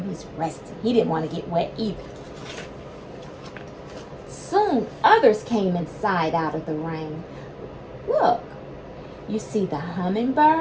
He's resting. He didn't want to get wet either. Soon, others came inside out of the rain. Look, you see the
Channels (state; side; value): identical; both; correlation 1.00